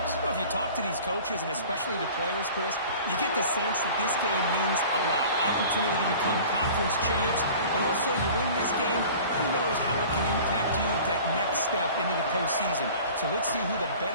Well, if you talk to these coaches, and especially the players, Chris, you get the sense that this game means a lot. Opportunity to become conference champs. And also, you win this game, who knows how it can impact you at that next step into the postseason. So let's see who the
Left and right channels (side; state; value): both; inverted; correlation -0.43